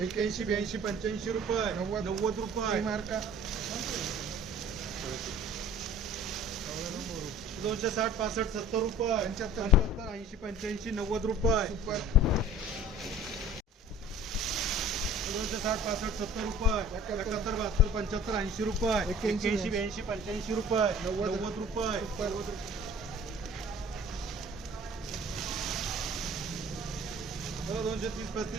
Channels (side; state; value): both; normal; correlation 0.47